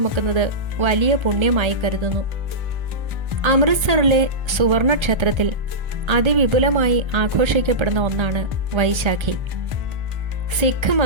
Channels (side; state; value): left; late; 1.3 ms